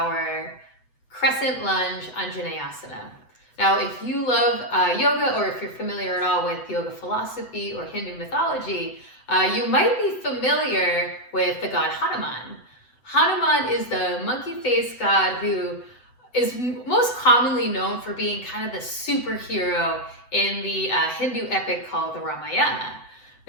Crescent lunge Anjaneyasana. Now, if you love yoga, or if you're familiar at all with yoga philosophy or Hindu mythology, you might be familiar with the god Hanuman. Hanuman is the monkey-faced god who is most commonly known for being kind of the superhero in the Hindu epic called the Ramayana.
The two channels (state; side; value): late; right; 8.0 ms